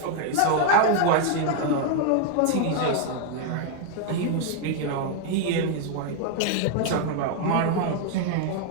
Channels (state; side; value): different; both; correlation 0.00